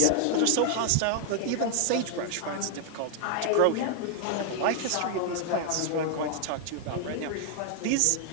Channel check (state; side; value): different; both; correlation 0.00